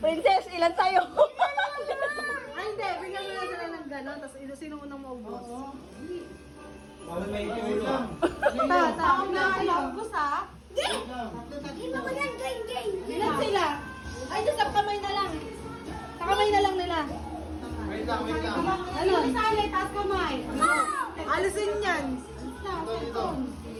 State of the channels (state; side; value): identical; both; correlation 1.00